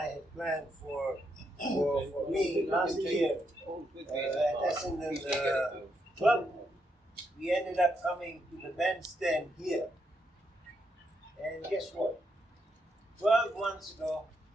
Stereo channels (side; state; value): both; normal; correlation 0.80